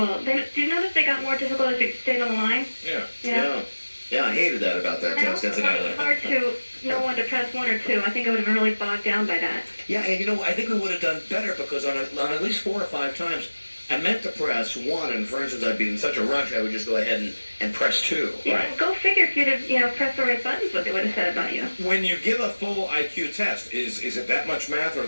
Do you notice they got more difficult as you stayed on the line? Yeah. Yeah, I hated that about that test. It's Incidentally. hard to know when to press 1 or 2. I think I would have been really bogged down by that. Yeah, and I think we would have done better because on at least 4 or 5 times, I meant to press 1, and for instance, I'd be in such a rush, I would just go ahead and press 2. Yeah, go figure if you'd have pressed the right buttons, what they would have said about you. When you give a full IQ test, is it that much math,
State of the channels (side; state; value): both; inverted; correlation -1.00